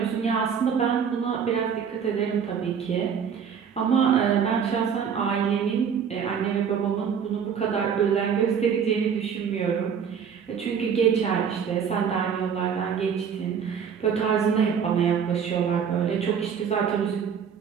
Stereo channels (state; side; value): quieter; left; 7.2 dB